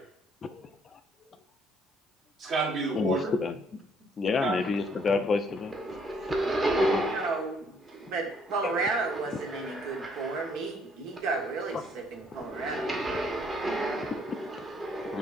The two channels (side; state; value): both; normal; correlation 0.66